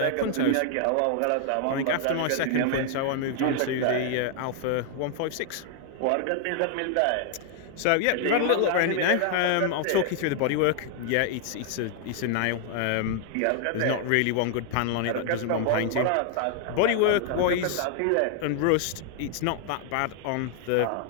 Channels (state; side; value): different; both; correlation 0.00